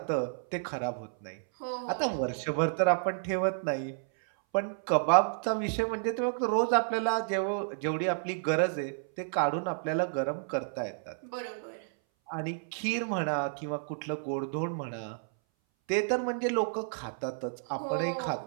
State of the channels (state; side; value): silent; left; 57 dB below the other